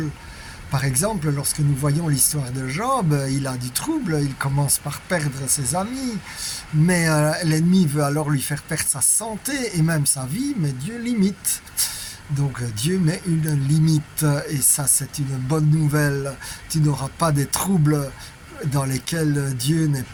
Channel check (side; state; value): both; identical; correlation 1.00